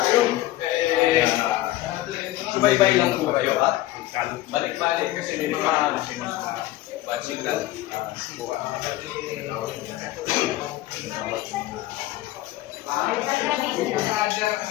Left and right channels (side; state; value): right; quieter; 16.0 dB